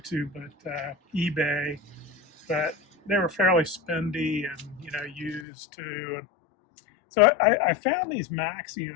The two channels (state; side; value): drops out; right; at 5.5 s